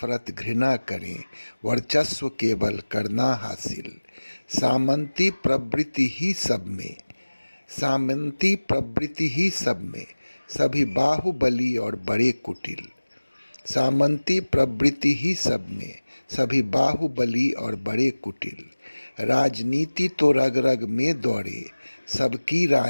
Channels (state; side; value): inverted; both; correlation -1.00